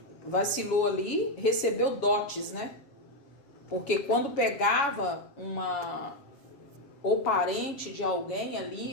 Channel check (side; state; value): right; late; 7.2 ms